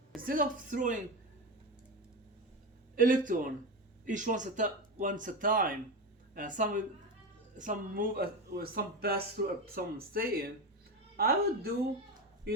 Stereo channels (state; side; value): normal; both; correlation 0.19